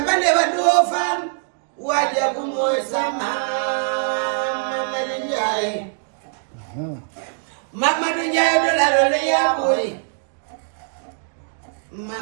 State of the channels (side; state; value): left; silent; digital silence